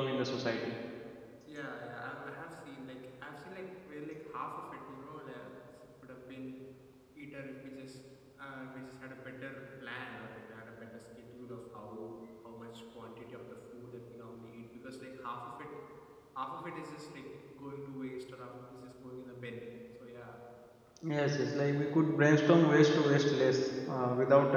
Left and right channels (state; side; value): identical; both; correlation 1.00